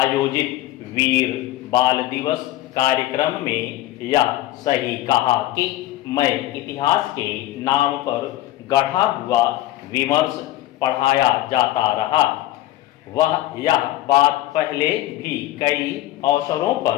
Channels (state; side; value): quieter; right; 15.2 dB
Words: वीर बाल दिवस कार्यक्रम में यह सही कहा कि मैं इतिहास के नाम पर गढ़ा हुआ विमर्श पढ़ाया जाता रहा। वह यह बात पहले भी कई अवसरों